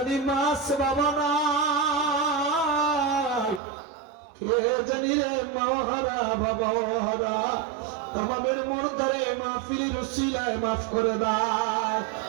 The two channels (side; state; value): left; drops out; at 3.6 s